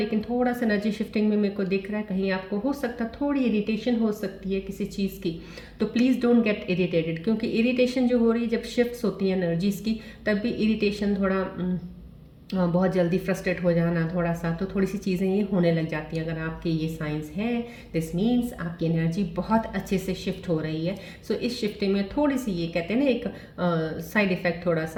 थोड़ा सा एनर्जी शिफ्टिंग में मेरे को दिख रहा है कहीं आपको हो सकता थोड़ी इरिटेशन हो सकती है किसी चीज़ की, तो प्लीज़ डोंट गेट इरिटेटेड क्योंकि इरिटेशन जो हो रही है जब शिफ्ट्स होती हैं एनर्जीज़ की तब भी इरिटेशन थोड़ा बहुत जल्दी फ्रस्ट्रेट हो जाना थोड़ा सा, तो थोड़ी सी चीज़ें ये होने लग जाती हैं। अगर आपके ये साइंस हैं दिस मीन्स आपकी एनर्जी बहुत अच्छे से शिफ्ट हो रही है। सो इस शिफ्टिंग में थोड़ी सी ये कहते हैं ना एक साइड इफ़ेक्ट थोड़ा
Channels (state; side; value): identical; both; correlation 1.00